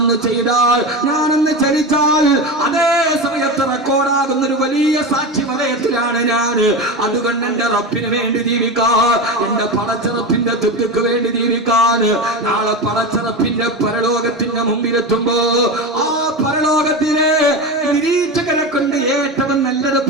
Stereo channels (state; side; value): normal; both; correlation 0.22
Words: ചെയ്താൽ, ഞാനൊന്ന് ചലിച്ചാൽ അതേ സമയത്ത് റെക്കോർഡാകുന്ന ഒരു വലിയ സാക്ഷി വലയത്തിലാണ് ഞാൻ. അതുകൊണ്ട് എന്റെ റബ്ബിന് വേണ്ടി ജീവിക്കാൻ, എന്റെ പടച്ചറപ്പിന്റെ തൃപ്തിക്ക് വേണ്ടി ജീവിക്കാൻ നാളെ പടച്ചറപ്പിന്റെ പരലോകത്തിന്റെ മുമ്പിലെത്തുമ്പോ ആ പരലോകത്തിലെ നിരീക്ഷകരെ കൊണ്ട് ഏറ്റവും നല്ലത്